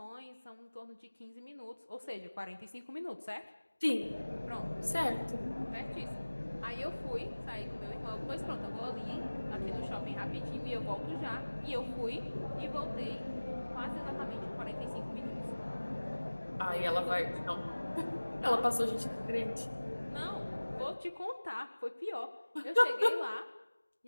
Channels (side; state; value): both; inverted; correlation -1.00